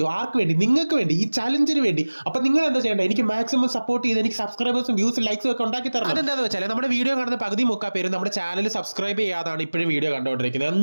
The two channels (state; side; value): inverted; both; correlation -1.00